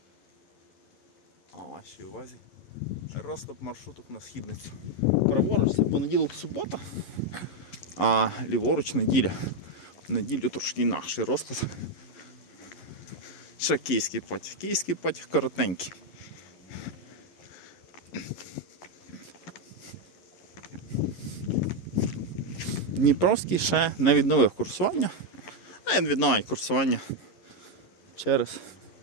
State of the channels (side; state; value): right; late; 11 ms